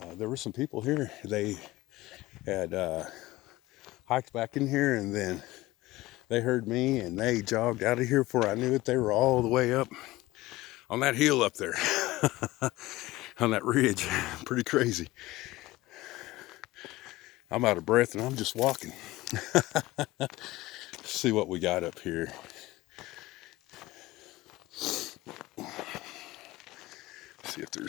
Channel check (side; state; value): right; quieter; 18.6 dB